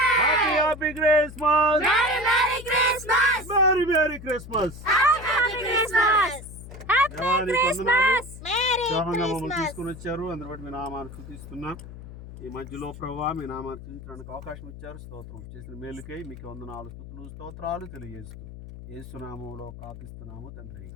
happy happy Christmas merry Christmas merry merry Christmas. Happy Christmas happy Christmas merry మమ్మల్ని తీసుకుని వచ్చారు, అందరి బట్టి మీ నామాన్ని స్తుతిస్తున్నాం. ఈ మధ్యలో ప్రభువా మీ నామాన్ని స్తుతించడానికి అవకాశం ఇచ్చారు. స్తోత్రం. చేసిన మేలుకై మీకు వందనాలు స్తుతులు స్తోత్రాలు తెలియజేస్తూ యేసు నామములో ప్రార్థిస్తున్నాము తండ్రి.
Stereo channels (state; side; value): noise; left; hum, 13 dB below the sound